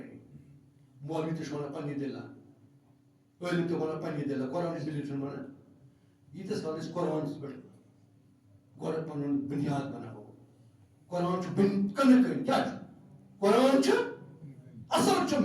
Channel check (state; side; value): identical; both; correlation 1.00